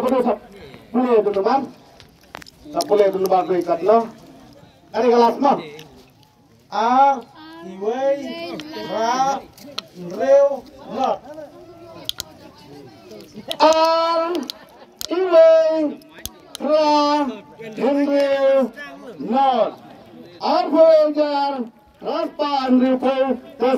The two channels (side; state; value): both; identical; correlation 1.00